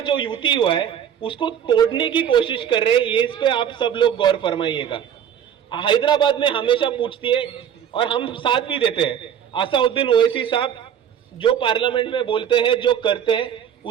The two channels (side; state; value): left; quieter; 9.1 dB